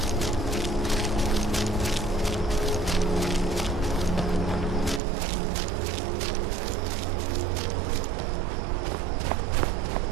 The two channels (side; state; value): left; drops out; at 5.0 s